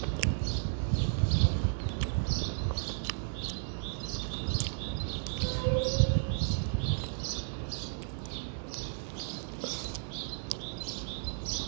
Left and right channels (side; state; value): left; silent; digital silence